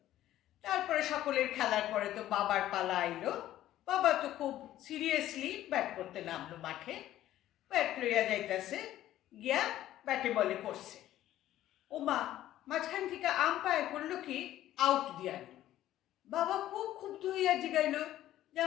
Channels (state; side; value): quieter; right; 13.4 dB